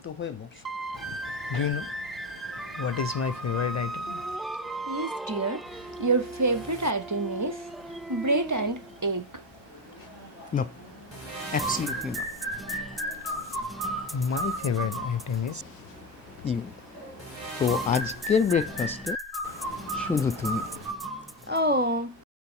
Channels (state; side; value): normal; both; correlation 0.17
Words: হয়ে বস। Do you know what is my favourite item? Yes, dear. Your favorite item is bread and egg. No, absolutely not. My favourite item is you. তো আজকের ব্রেকফাস্টে শুধু তুমি। Oh,